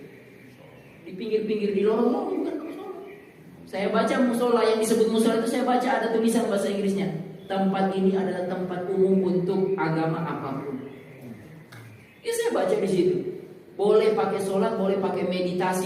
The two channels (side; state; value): both; identical; correlation 1.00